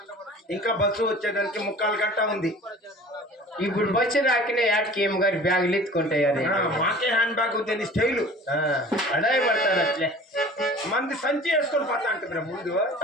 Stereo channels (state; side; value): normal; both; correlation 0.44